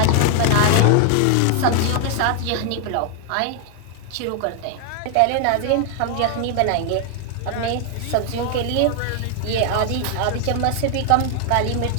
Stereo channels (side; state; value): both; different; correlation 0.00